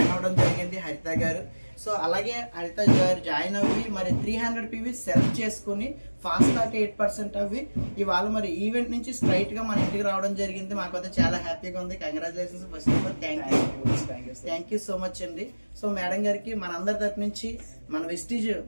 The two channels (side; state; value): both; inverted; correlation -1.00